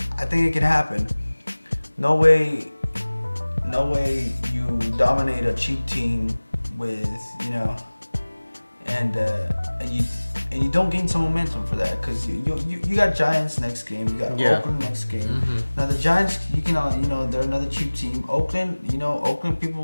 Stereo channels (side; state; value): both; inverted; correlation -1.00